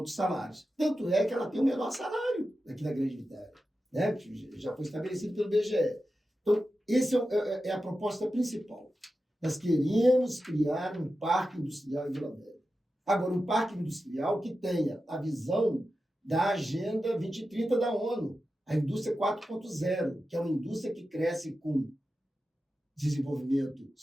salários. Tanto é que ela tem o menor salário aqui na Grande Vitória, né? Já foi estabelecido pelo BGE. Então, essa é a proposta principal. Nós queremos criar um parque industrial em Vila Velha. Agora, um parque industrial que tenha a visão da Agenda 2030 da ONU, a indústria 4.0, que é uma indústria que cresce com desenvolvimento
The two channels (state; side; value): normal; both; correlation 0.92